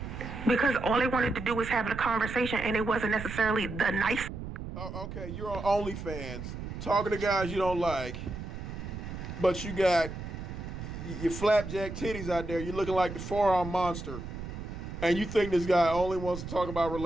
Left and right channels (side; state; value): right; noise; rumble, 8 dB below the sound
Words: Because all they wanted to do was have a conversation and it wasn't necessarily the nice. Oh, okay, you're on OnlyFans talking to guys you don't like, but you got your flapjack titties out there. You're looking like the forearm monster, and you think this guy only wants to talk about